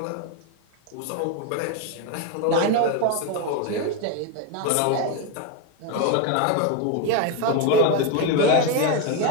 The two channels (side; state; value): both; different; correlation 0.02